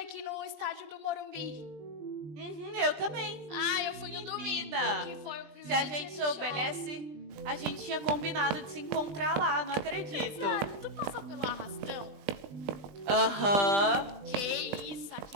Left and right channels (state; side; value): late; left; 20 ms